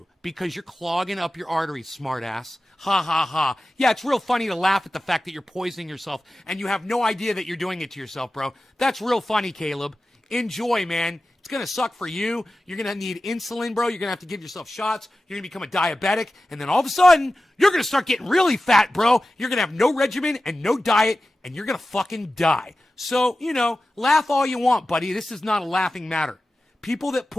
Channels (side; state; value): both; normal; correlation 0.94